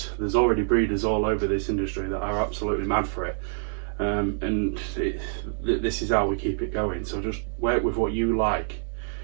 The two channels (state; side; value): silent; left; 61 dB below the other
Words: There's already breeders all over this industry that are absolutely mad for it. And this is how we keep it going. So just work with what you like.